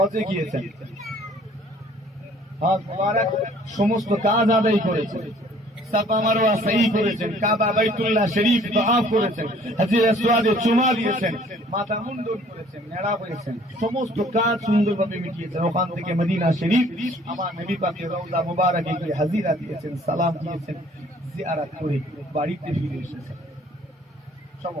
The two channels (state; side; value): normal; both; correlation 0.56